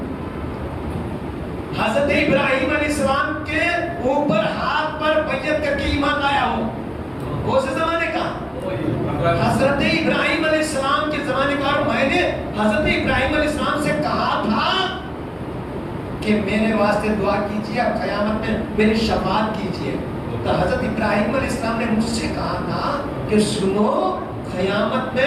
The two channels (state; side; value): identical; both; correlation 1.00